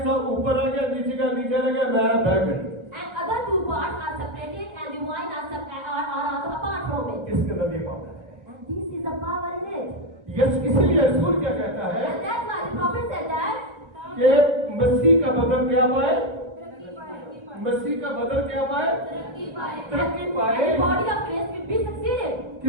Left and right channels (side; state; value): left; late; 1.3 ms